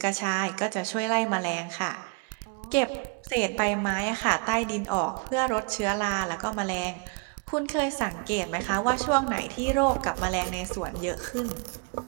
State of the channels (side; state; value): left; quieter; 35.5 dB